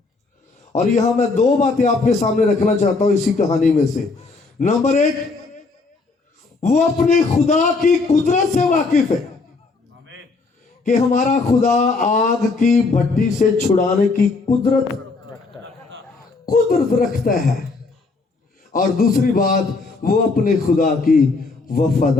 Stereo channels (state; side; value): quieter; right; 3.9 dB